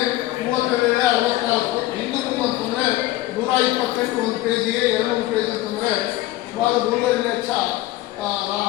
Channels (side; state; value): right; quieter; 16.6 dB